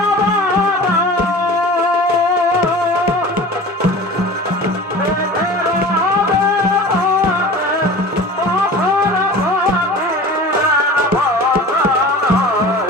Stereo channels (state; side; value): normal; both; correlation 0.38